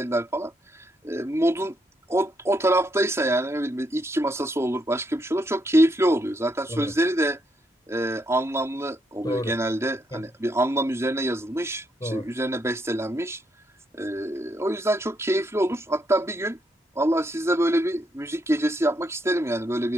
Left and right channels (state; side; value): normal; both; correlation 0.77